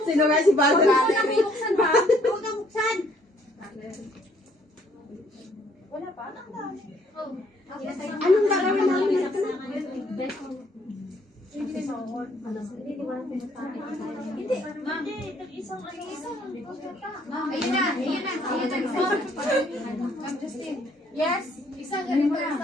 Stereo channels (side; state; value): both; normal; correlation 0.64